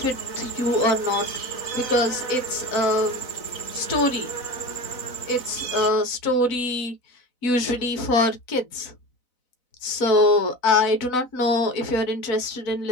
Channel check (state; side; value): late; right; 4.0 ms